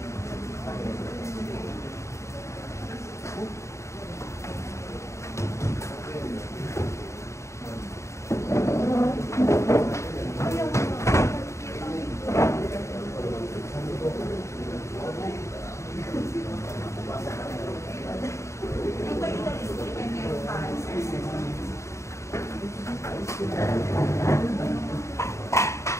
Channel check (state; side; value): late; right; 0.14 ms